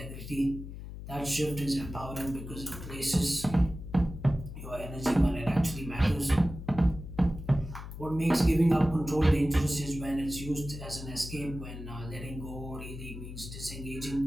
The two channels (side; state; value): left; noise; hum, 10 dB below the sound